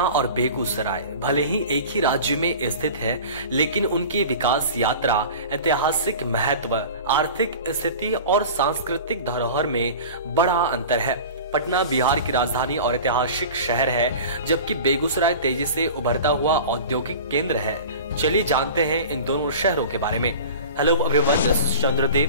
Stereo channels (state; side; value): inverted; both; correlation -0.37